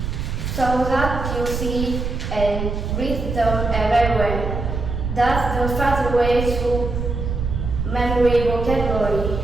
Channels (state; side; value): noise; right; rumble, 4 dB below the sound